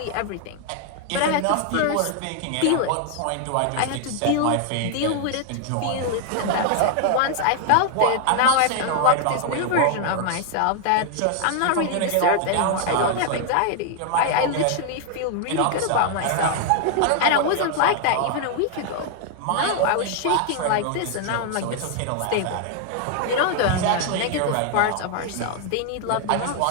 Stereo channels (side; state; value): both; different; correlation 0.00